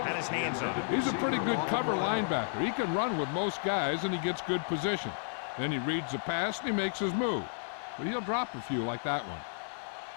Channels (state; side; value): silent; right; 56 dB below the other